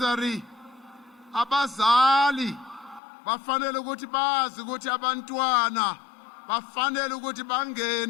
Abazali bafanele ukuthi bazi ukuthi abantwana bafanele ukuthi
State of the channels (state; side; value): drops out; right; at 3.0 s